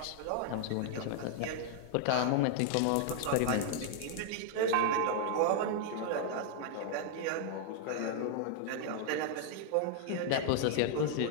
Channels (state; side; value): different; both; correlation 0.00